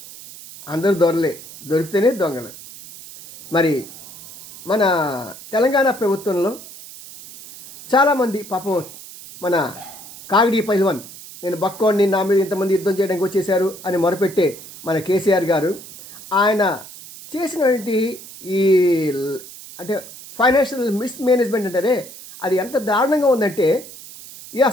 అందరూ దొరలే, దొరికితేనే దొంగలు. మరి మన తెలంగాణ ప్రభుత్వంలో చాలామంది పాపం మన కాగిడి పైల్వాన్, నేను బక్కోడిని, నా మీద ఇంతమంది యుద్ధం చేయడానికి వచ్చేసారు అని మొరపెట్టే మన కేసీఆర్ గారు ఆయన చేసినటువంటి ఈ అంటే ఫైనాన్షియల్ మిస్మేనేజ్మెంట్ అంటారే, అది ఎంత దారుణంగా ఉందంటే ఇది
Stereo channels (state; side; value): noise; right; hiss, 16 dB below the sound